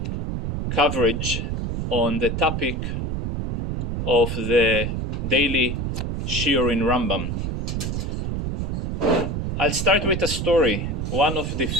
coverage on the topic of the daily Shir in Rambam. I'll start with a story. One of the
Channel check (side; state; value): right; noise; rumble, 2 dB below the sound